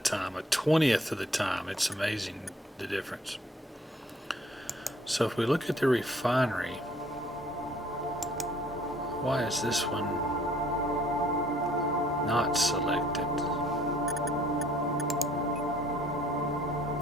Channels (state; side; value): normal; both; correlation 0.59